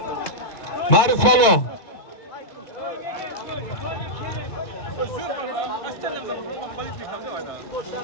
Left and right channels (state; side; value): late; right; 2.2 ms